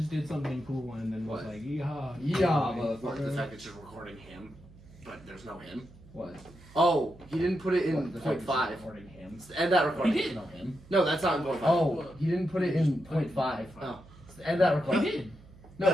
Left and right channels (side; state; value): right; noise; hum, 22 dB below the sound